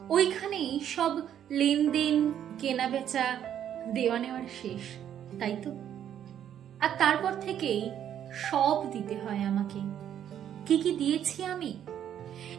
ওইখানেই সব লেনদেন, কেনা বেচা, দেওয়া নেওয়ার শেষ, তাই তো? আর তারপর থেকেই সব দিতে হয় আমাকে। কি কি দিয়েছি আমি?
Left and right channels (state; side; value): quieter; left; 10.0 dB